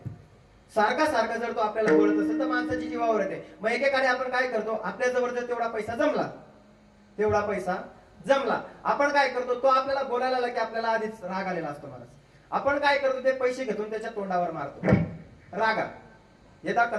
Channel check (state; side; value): identical; both; correlation 1.00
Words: सारखा जर तो आपल्याला बोलत असेल तर माणसाची जीवावर येते. मग एकेकाने आपण काय करतो? आपल्या जवळ जर तेवढा पैसा जमला आपण काय करतो? तो आपल्याला बोलायला आला की आपल्याला आधीच राग आलेला असतो महाराज. आपण काय करतो? ते पैसे घेऊन त्याच्या तोंडावर मारतो रागात. यदा